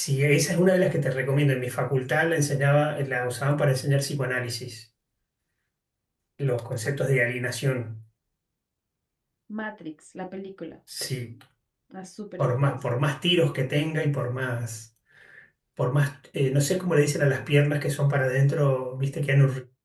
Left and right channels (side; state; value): both; identical; correlation 1.00